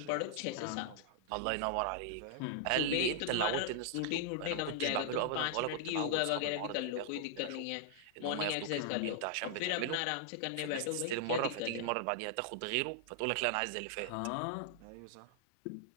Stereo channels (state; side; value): different; both; correlation -0.01